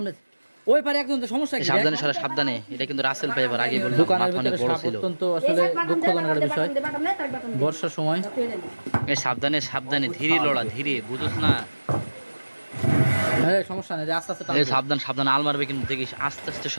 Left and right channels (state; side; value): inverted; both; correlation -1.00